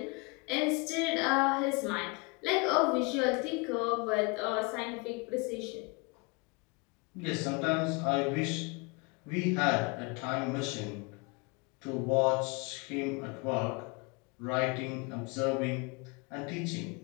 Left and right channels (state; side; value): quieter; right; 29.5 dB